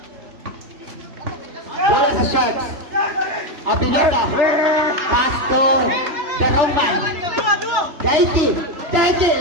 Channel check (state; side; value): late; left; 3.3 ms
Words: Where is the shots? Abinota. Pass to the Roman. Daiki.